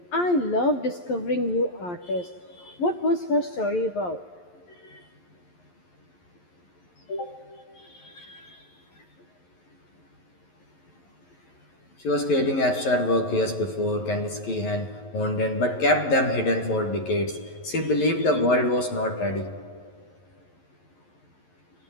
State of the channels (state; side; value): late; right; 11 ms